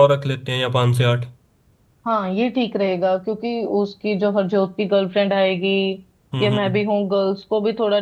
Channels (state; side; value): identical; both; correlation 1.00